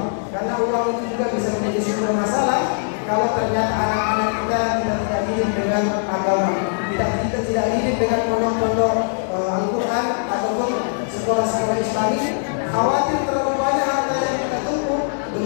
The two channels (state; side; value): silent; right; digital silence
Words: karena uang itu juga bisa menjadi sumber masalah kalau ternyata anak-anak kita tidak dididik dengan agama, kita tidak dididik dengan pondok-pondok Al-Quran ataupun sekolah-sekolah Islami. Khawatir terlalu banyak harta yang kita tumpuk,